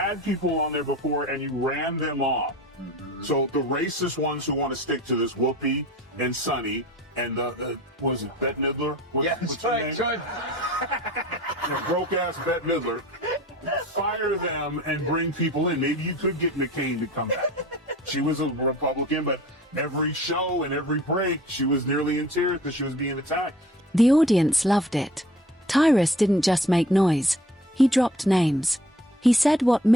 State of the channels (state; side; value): normal; both; correlation 0.46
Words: people on there before, and you ran them off. Mm-hmm. So the racist ones who want to stick to this, Whoopi and Sonny, and what is it, Bette Midler? What's right, good. Broke-ass Bette Midler. Fire them and bring people in. Maybe you could get McCain to come back. She was a Republican, but every show and every break, she was nearly in tears because she was being attacked. The audience loved it. Tyrus didn't just make noise. He dropped names. He said what